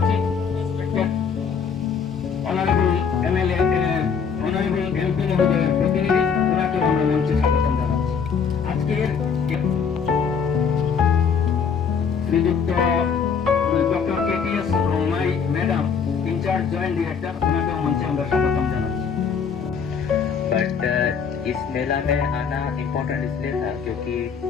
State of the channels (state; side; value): quieter; right; 6.4 dB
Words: অনারেবল এমএলএ অনারেবল এমপি মহোদয়ের প্রতিনিধি, ওনাকেও আমরা মঞ্চে স্বাগতম জানাচ্ছি। আজকের শ্রীযুক্ত doctor KTS Romai madam, incharge joint director, उन्हें मंच में हम स्वागतम जानाচ্ছি। बट इस मेला में आना इम्पोर्टेंट इसलिए था क्योंकि